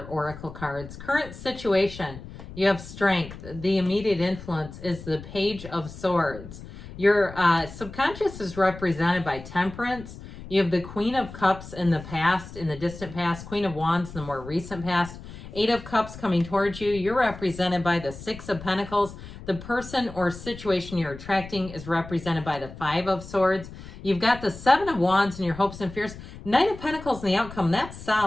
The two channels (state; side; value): noise; left; rumble, 14 dB below the sound